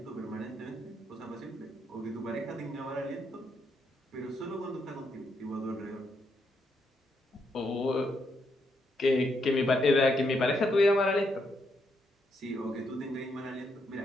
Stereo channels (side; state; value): both; normal; correlation 0.78